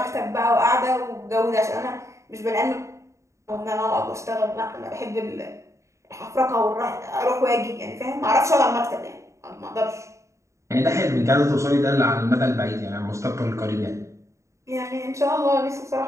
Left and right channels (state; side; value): late; left; 0.14 ms